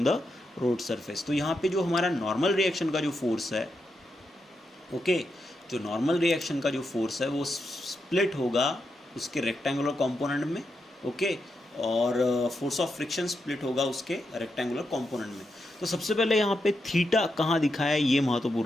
द रोड सरफेस। तो यहाँ पे जो हमारा नॉर्मल रिएक्शन का जो फोर्स है, ओके, जो नॉर्मल रिएक्शन का जो फोर्स है वो स्प्लिट होगा उसके रेक्टेंगुलर कंपोनेंट में। ओके, और फोर्स ऑफ फ्रिक्शन स्प्लिट होगा उसके रेक्टेंगुलर कंपोनेंट में। तो सबसे पहले यहाँ पे थीटा कहाँ दिखाया है, ये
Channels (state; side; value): normal; both; correlation 0.85